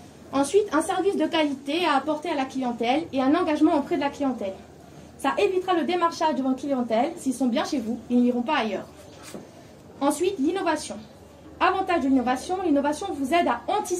Ensuite, un service de qualité à apporter à la clientèle et un engagement auprès de la clientèle. Ça évitera le démarchage de votre clientèle. S'ils sont bien chez vous, ils n'iront pas ailleurs. Ensuite, l'innovation. Avantage de l'innovation, l'innovation vous aide à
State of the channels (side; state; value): both; identical; correlation 1.00